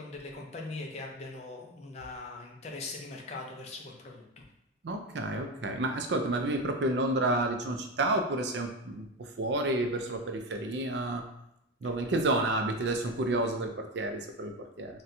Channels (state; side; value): normal; both; correlation 0.18